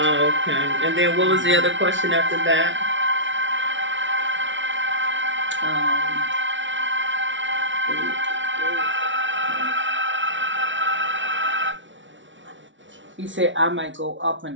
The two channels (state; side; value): late; left; 0.55 ms